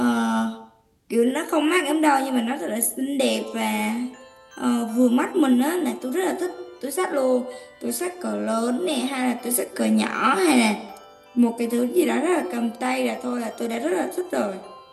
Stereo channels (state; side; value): identical; both; correlation 1.00